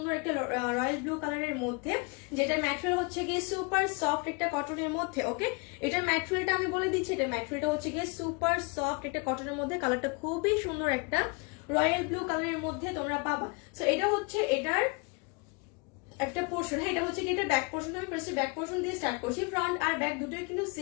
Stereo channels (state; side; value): quieter; right; 31.5 dB